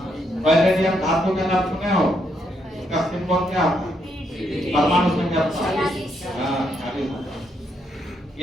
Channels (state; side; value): normal; both; correlation 0.77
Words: पैलेडियम धातु का नाम सुने हो? इसका सिंबल क्या होता है? परमाणु संख्या 40।